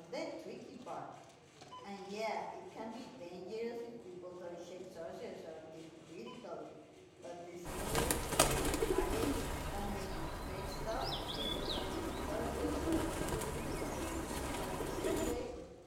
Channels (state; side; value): identical; both; correlation 1.00